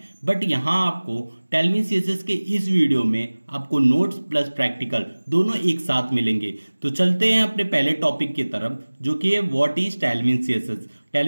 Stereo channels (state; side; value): inverted; both; correlation -1.00